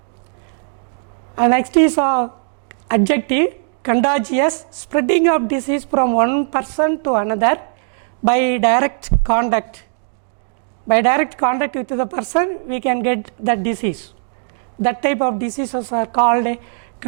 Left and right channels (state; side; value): silent; left; digital silence